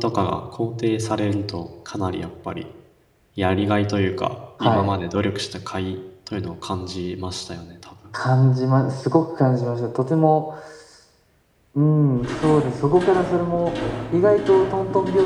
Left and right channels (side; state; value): both; identical; correlation 1.00